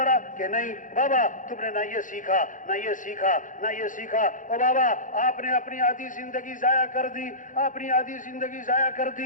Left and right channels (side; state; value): right; late; 0.38 ms